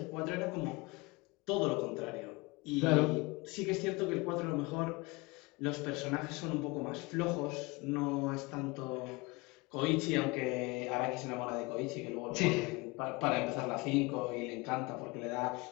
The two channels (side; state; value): right; quieter; 25.1 dB